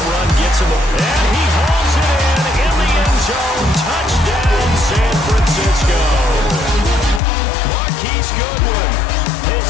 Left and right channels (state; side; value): drops out; right; at 7.2 s